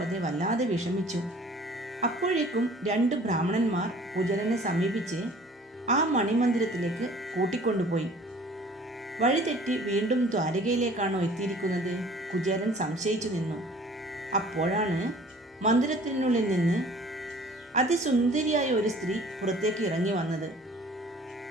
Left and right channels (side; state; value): both; normal; correlation 0.50